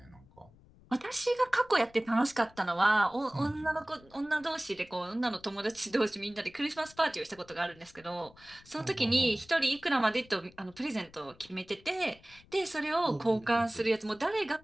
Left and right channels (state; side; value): noise; left; rumble, 26 dB below the sound